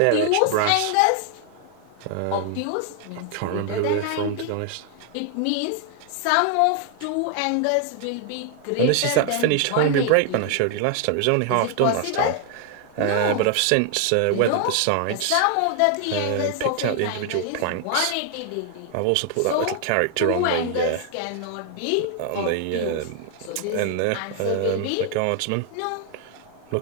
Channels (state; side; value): different; both; correlation 0.00